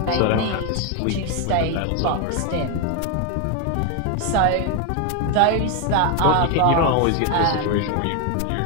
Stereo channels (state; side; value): different; both; correlation 0.01